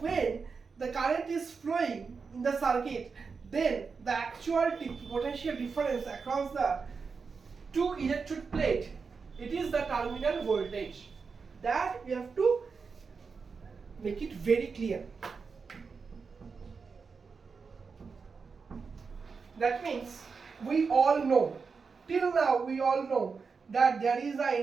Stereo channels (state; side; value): quieter; left; 5.1 dB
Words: the current is flowing in the circuit, then the actual potential difference across the two electrode plate, it is the terminal voltage. That we have to make it very clear. That means we all know, till now we all know that there is an